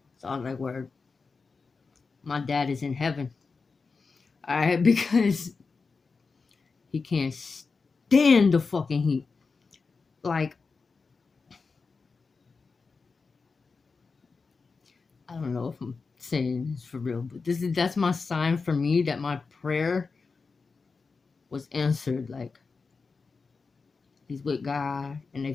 so I was like, word, my dad is in heaven. All right, because he can't stand the fucking heat. Like, I don't know if I'm saying this for real, but that's my sign for me that my prayer was answered. Like, he's with God and they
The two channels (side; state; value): right; quieter; 4.6 dB